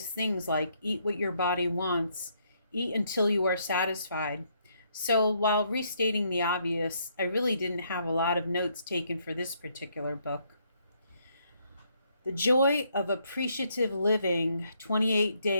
things like eat what your body wants, eat until you are satisfied. So while restating the obvious, I really didn't have a lot of notes taken for this particular book. The Joy of Appreciative Living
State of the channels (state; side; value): inverted; both; correlation -0.72